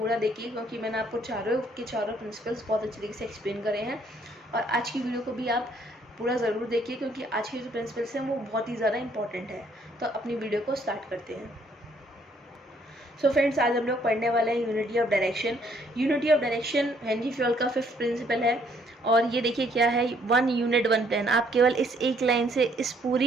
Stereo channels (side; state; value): both; normal; correlation 0.66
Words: देखिए क्योंकि मैंने आपको चारों प्रिंसिपल्स बहुत अच्छी तरीके से एक्सप्लेन करे हैं। और आज की वीडियो को भी आप पूरा ज़रूर देखिए क्योंकि आज के जो प्रिंसिपल्स हैं वो बहुत ही ज़्यादा इंपॉर्टेंट है। तो अपनी वीडियो को स्टार्ट करते हैं। सो फ्रेंड्स, आज हम लोग पढ़ने वाले हैं unity of direction. Unity of direction Henry fuel का 5th प्रिंसिपल है और ये देखिए क्या है, 1 यूनिट 1 प्लान। आप केवल इस एक लाइन से इस